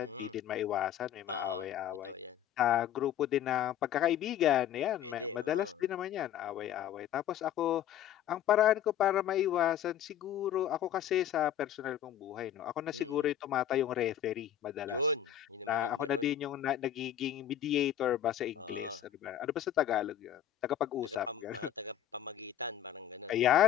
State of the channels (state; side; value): quieter; right; 10.6 dB